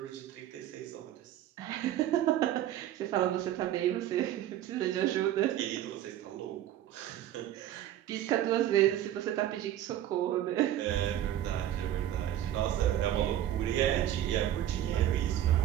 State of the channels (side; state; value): left; quieter; 12.1 dB